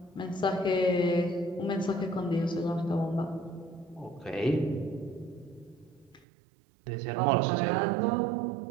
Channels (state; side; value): drops out; left; at 6.2 s